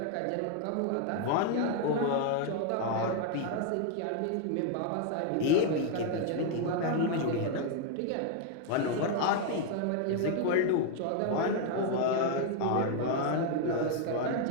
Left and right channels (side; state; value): both; different; correlation 0.00